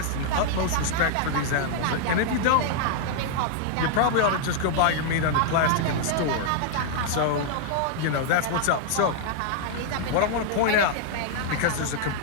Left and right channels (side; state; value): both; different; correlation 0.00